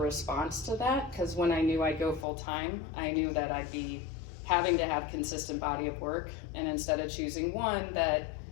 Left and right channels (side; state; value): right; drops out; at 2.2 s